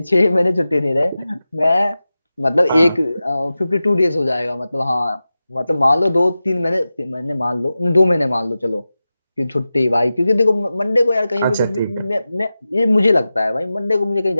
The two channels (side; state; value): both; inverted; correlation -0.94